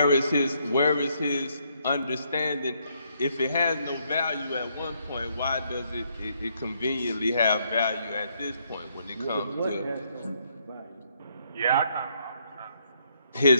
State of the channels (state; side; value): inverted; both; correlation -0.72